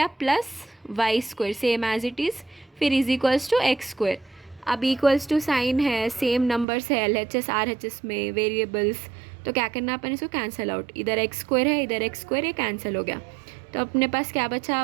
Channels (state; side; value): drops out; left; at 6.7 s